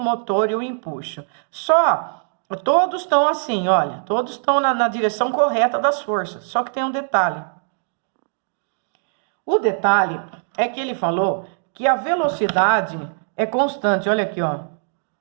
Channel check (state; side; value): silent; left; digital silence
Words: e o empuxo. Todos estão assim, olha, todos estão na direção correta das forças, só que tem um detalhe. O detalhe é que ele falou que a velocidade é constante, olha aqui, ó,